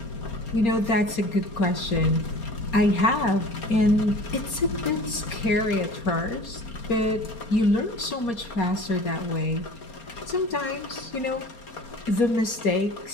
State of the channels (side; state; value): right; late; 4.3 ms